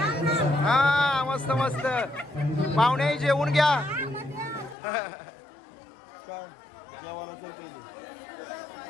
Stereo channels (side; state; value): right; drops out; at 4.8 s